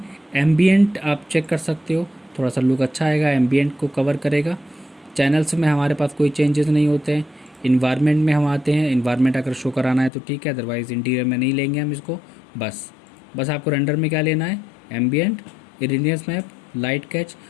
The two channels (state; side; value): drops out; right; at 10.1 s